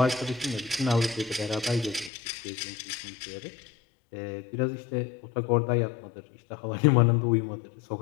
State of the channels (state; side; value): drops out; right; at 2.1 s